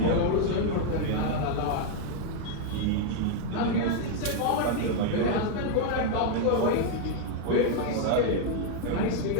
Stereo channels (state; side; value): different; both; correlation 0.00